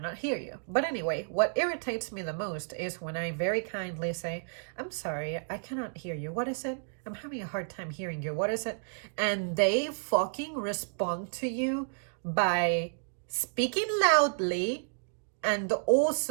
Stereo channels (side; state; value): left; silent; digital silence